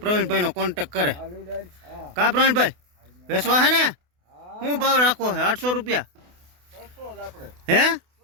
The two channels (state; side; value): late; left; 28 ms